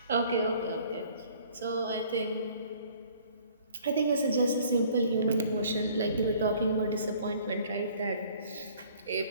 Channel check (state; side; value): inverted; both; correlation -0.55